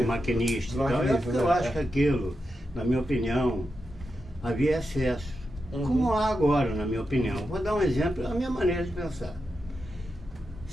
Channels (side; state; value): both; normal; correlation 0.88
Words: maquinista. Do Então, maquinista, eu né? acho que aquilo, na minha opinião, havia excesso. Uhum. Como há agora, na minha opinião. Vou dar um exemplo, a minha maneira de pensar.